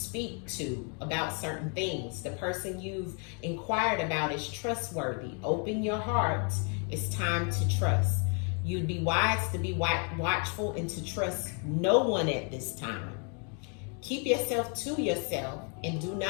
to about certain things. The person you've inquired about is trustworthy. Open your heart. It's time to trust. You'd be wise to be watchful and to trust no one at this time. Keep yourself to yourself and do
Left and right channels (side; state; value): right; quieter; 39.4 dB